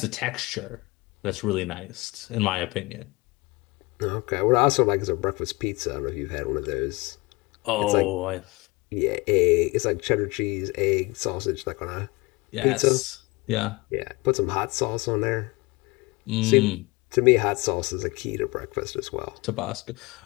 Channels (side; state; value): right; quieter; 24.4 dB